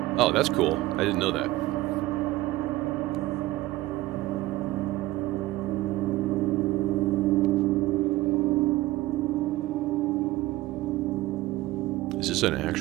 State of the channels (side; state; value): left; quieter; 17.6 dB